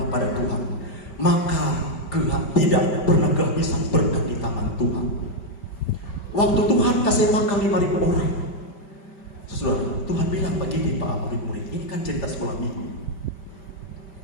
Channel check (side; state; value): right; late; 5.2 ms